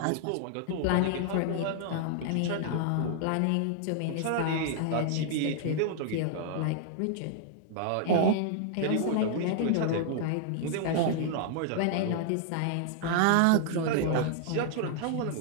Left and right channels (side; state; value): both; different; correlation 0.00